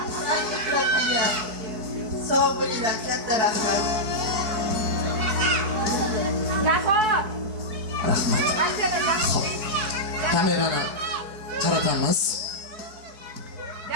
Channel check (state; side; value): late; left; 4.6 ms